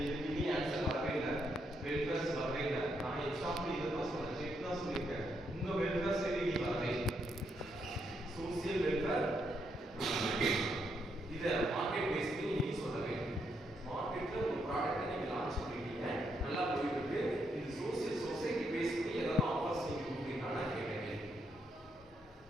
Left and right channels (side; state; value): both; normal; correlation 0.78